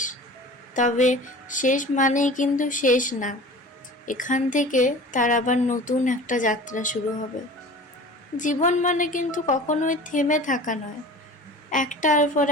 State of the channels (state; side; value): normal; both; correlation 0.40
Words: তবে শেষ মানেই কিন্তু শেষ না। এখান থেকে তার আবার নতুন একটা যাত্রা শুরু হবে। জীবন মানে কিন্তু কখনোই থেমে থাকা নয়। একটার পর